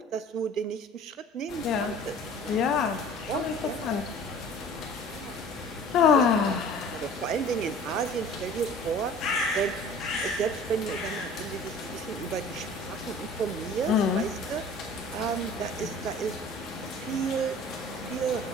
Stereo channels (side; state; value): both; normal; correlation 0.45